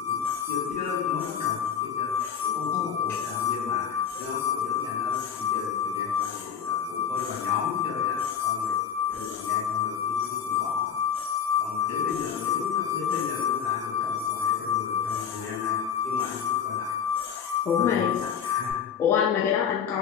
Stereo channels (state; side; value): quieter; right; 7.9 dB